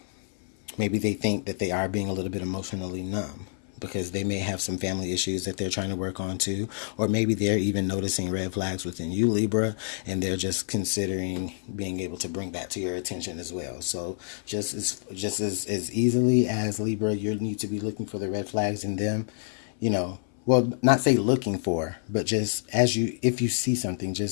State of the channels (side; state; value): right; silent; 60 dB below the other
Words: maybe they think that they are being a little bit emotionally numb, because they may have some family issues that they're trying to work on too, or maybe they're even noticing red flags within you, Libra, and they're just considering being able to bring that to your attention as well. So just as easily as, Libra, you need to be looking for the red flags in them, well, not say looking for, but just if you see something,